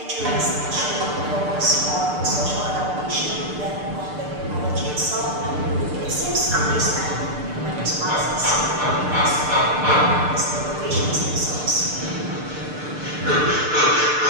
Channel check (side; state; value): left; late; 6.7 ms